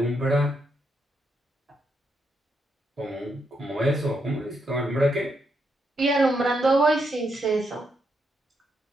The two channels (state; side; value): normal; both; correlation 0.79